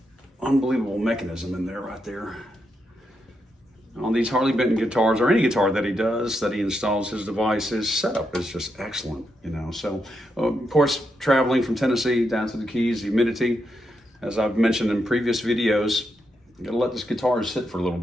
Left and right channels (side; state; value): both; normal; correlation 0.82